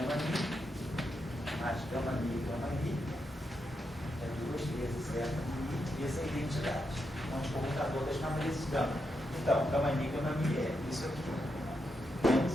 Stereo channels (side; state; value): both; normal; correlation 0.84